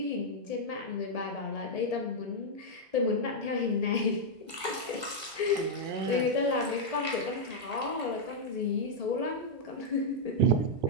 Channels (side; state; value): left; late; 1.7 ms